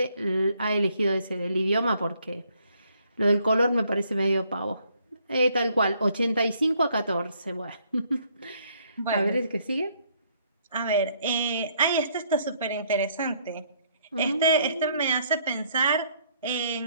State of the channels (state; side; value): inverted; both; correlation -0.67